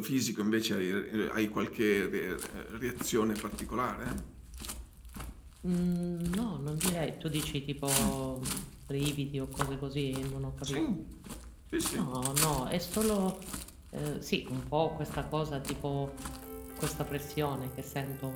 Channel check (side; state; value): both; identical; correlation 1.00